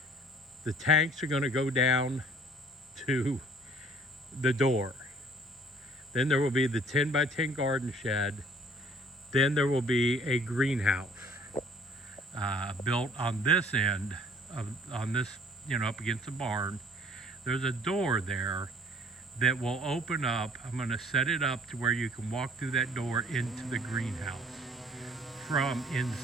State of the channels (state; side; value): normal; both; correlation 0.56